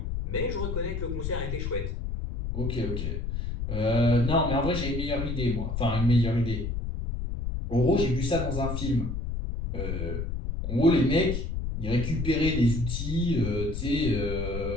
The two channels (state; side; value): noise; left; rumble, 3 dB below the sound